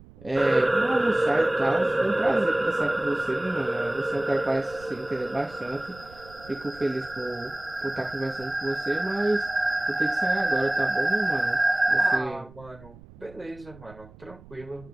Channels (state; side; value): noise; right; rumble, 21 dB below the sound